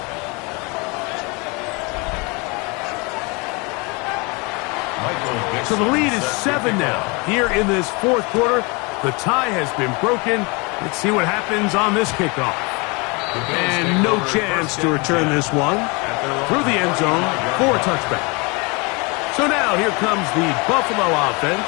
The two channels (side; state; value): right; quieter; 28.8 dB